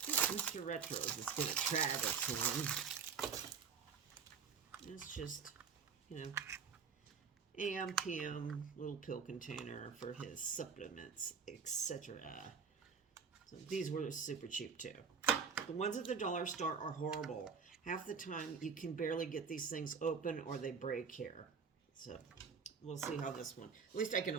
Mr. Retros is going to try this one. It's just, AM, PM, little pill container for his supplements, etc. So these were super cheap too. The ones at the dollar store are horrible. Half the time you can barely get these things open or they break here. So we'll see how this one, at least I can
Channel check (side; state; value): left; quieter; 6.0 dB